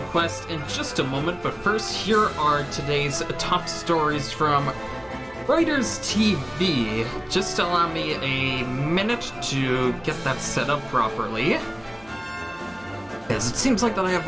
Quest in just a moment, but first, here are today's top stories from Reuters TV. Just allow me a minute to get that set up properly, because it seems like that I have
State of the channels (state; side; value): noise; left; hum, 25 dB below the sound